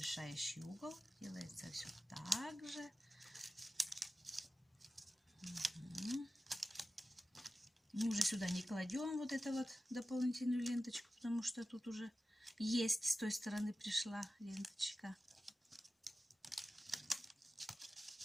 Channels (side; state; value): both; normal; correlation 0.94